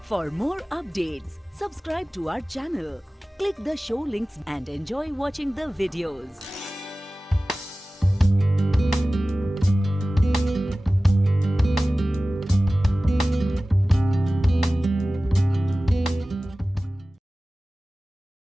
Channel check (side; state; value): both; normal; correlation 0.97